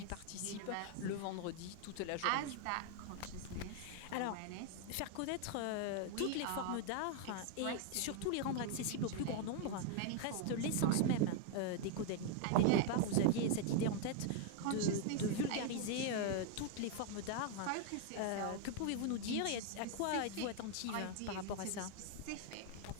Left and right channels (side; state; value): both; different; correlation 0.00